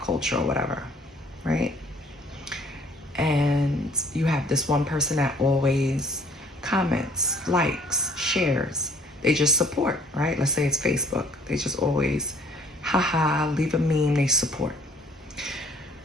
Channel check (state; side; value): normal; both; correlation 0.57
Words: culture or whatever, right? And you have this one person that always comments, likes, shares. They just support, right? Let's say it's Facebook. They just always, haha, leave a meme, they support.